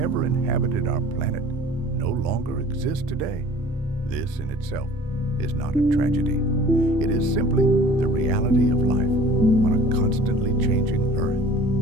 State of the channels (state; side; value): normal; both; correlation 0.47